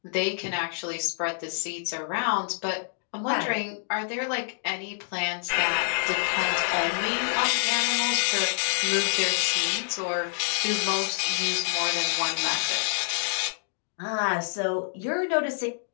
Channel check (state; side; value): silent; right; digital silence